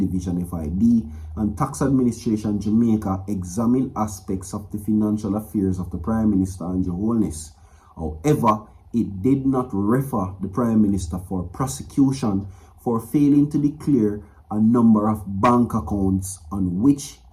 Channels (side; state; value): both; identical; correlation 1.00